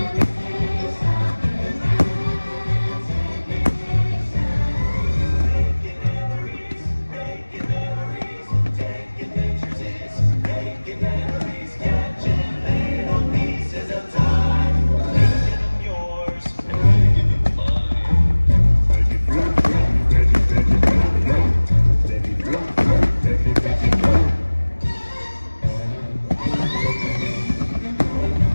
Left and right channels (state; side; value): inverted; both; correlation -1.00